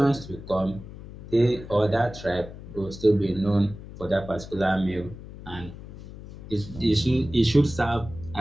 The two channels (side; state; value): left; noise; hum, 14 dB below the sound